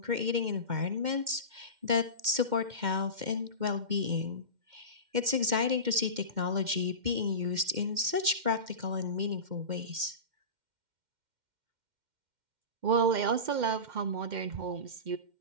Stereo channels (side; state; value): left; late; 2.1 ms